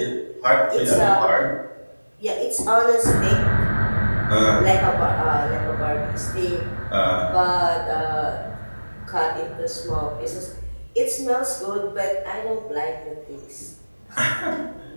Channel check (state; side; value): inverted; both; correlation -1.00